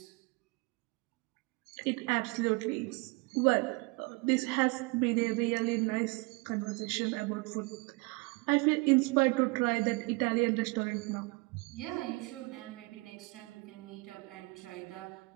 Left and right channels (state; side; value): quieter; left; 27.4 dB